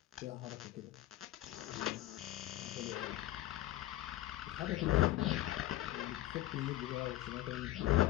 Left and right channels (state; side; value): quieter; right; 15.0 dB